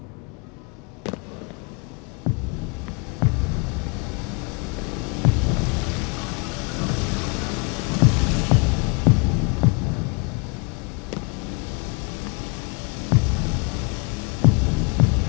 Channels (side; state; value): right; quieter; 32.2 dB